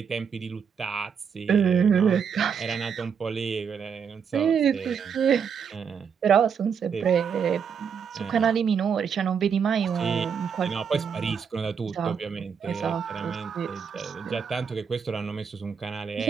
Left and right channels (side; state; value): left; quieter; 6.8 dB